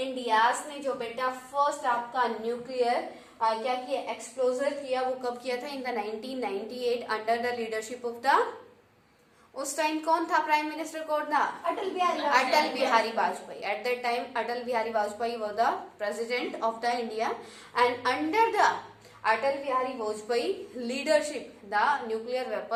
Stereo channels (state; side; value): identical; both; correlation 1.00